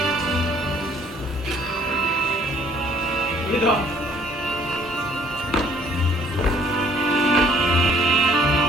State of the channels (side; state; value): both; normal; correlation 0.58